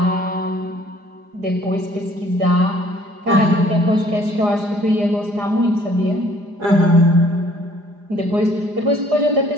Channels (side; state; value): left; late; 4.9 ms